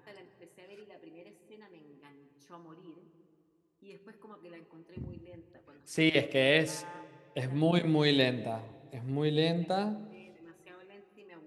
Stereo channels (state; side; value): identical; both; correlation 1.00